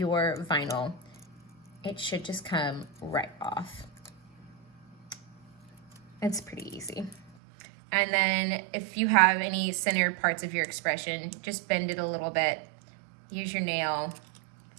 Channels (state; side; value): drops out; left; at 7.4 s